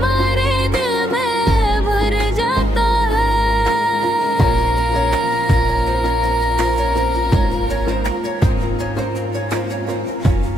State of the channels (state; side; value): normal; both; correlation 0.78